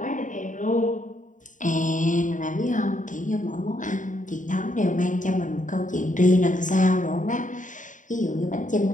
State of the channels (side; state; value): right; late; 0.37 ms